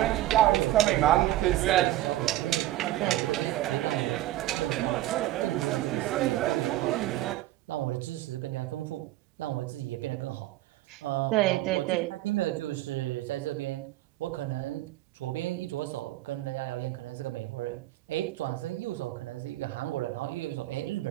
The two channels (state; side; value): quieter; left; 15.4 dB